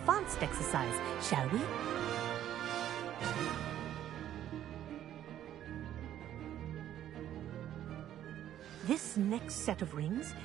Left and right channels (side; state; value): left; quieter; 11.5 dB